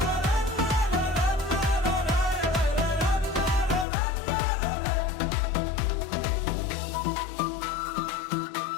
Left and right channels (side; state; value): right; drops out; at 3.9 s